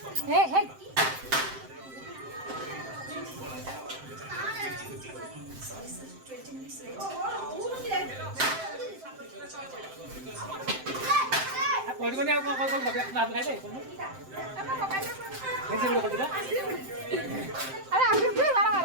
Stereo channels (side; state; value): left; late; 7.7 ms